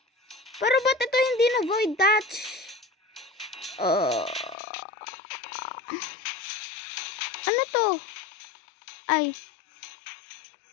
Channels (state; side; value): drops out; right; at 4.5 s